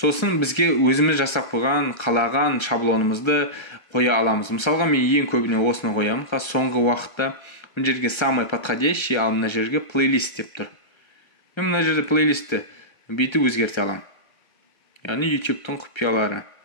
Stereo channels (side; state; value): right; late; 1.3 ms